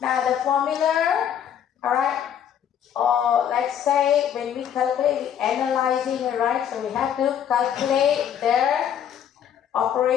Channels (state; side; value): quieter; right; 9.2 dB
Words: the formula, alright, or let's say when we calculate, we're analyzing it, right? So we have to calculate their